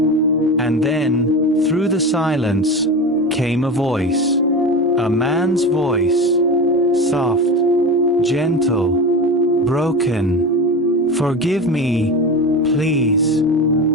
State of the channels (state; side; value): normal; both; correlation 0.26